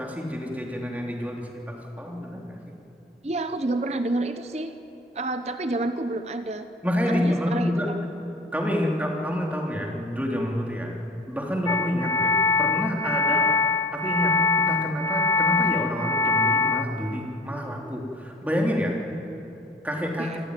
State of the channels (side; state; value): both; normal; correlation 0.44